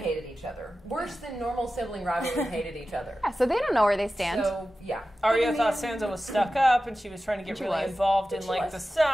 each other. Worse than normal sibling rivalries hated each other. Yeah, so they don't know where they stand. So, yeah. Arya thought Sansa was stuck up, and she was trying to get She really was. involved in She like was. the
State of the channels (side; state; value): both; normal; correlation 0.94